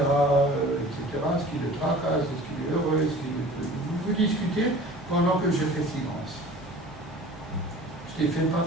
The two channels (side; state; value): both; normal; correlation 0.43